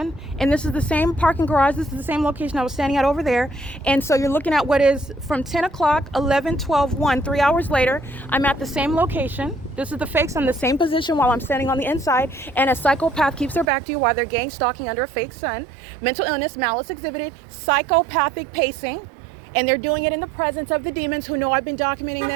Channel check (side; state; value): left; drops out; at 13.7 s